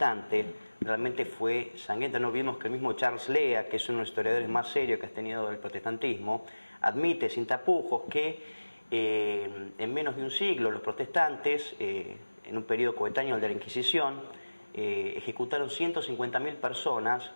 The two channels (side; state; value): both; inverted; correlation -1.00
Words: realmente fue sangrienta. No olvidemos que el mismo Charles Lea, que es uno de los historiadores más serios que ha tenido el protestantismo, admite sin tapujos que en menos de un siglo los protestantes, en un periodo coetáneo al de la Inquisición, ejecutaron 150.000 personas